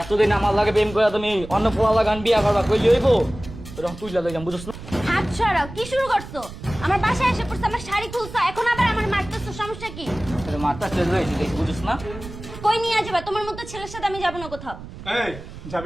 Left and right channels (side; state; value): right; noise; rumble, 13 dB below the sound